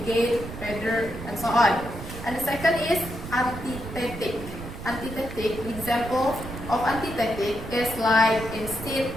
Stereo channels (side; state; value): right; noise; rumble, 10 dB below the sound